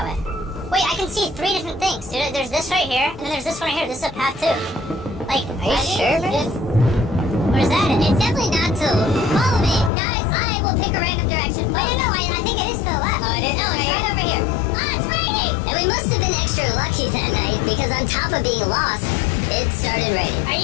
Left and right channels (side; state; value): right; drops out; at 9.9 s